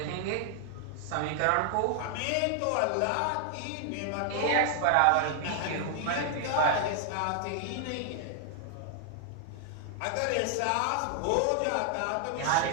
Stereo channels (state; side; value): different; both; correlation 0.00